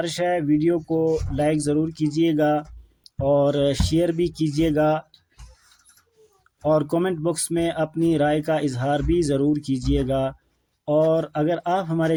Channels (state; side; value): identical; both; correlation 1.00